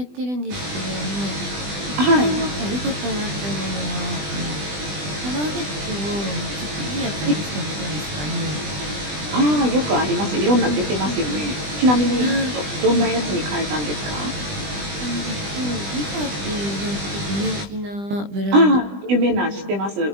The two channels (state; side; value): late; left; 20 ms